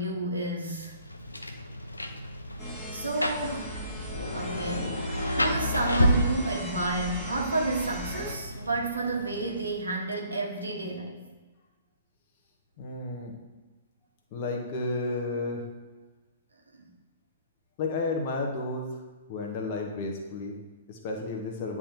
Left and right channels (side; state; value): both; inverted; correlation -0.59